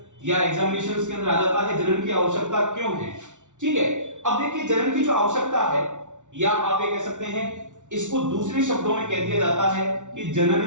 या एग्जामिनेशंस के अंदर आ जाता है, जनन की आवश्यकता क्यों है। ठीक है, अब देखिए जनन की जो आवश्यकता है, या आप ये कह सकते हैं इसको दूसरे शब्दों में कह दिया जाता है कि जनन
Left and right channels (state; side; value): late; left; 0.86 ms